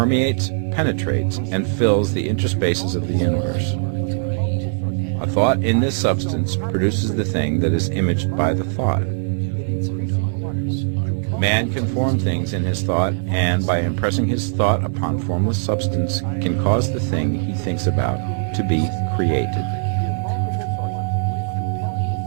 penetrates, and fills the interspaces of the universe. A thought in this substance produces the thing that is imaged by the thought. Man can form things in his thought, and by impressing his thought upon formless substance, can cause the thing he thinks about to be created.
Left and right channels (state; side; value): silent; left; digital silence